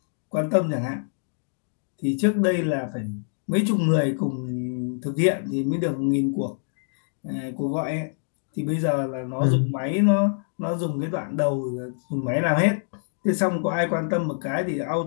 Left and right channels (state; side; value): silent; right; digital silence